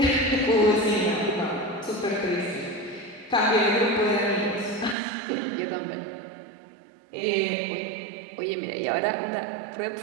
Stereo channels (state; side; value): drops out; left; at 5.0 s